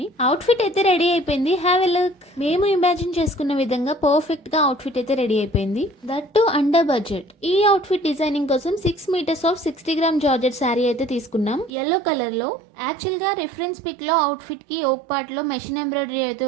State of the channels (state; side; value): drops out; left; at 11.7 s